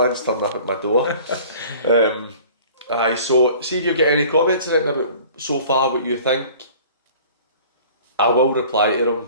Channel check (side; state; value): both; inverted; correlation -0.47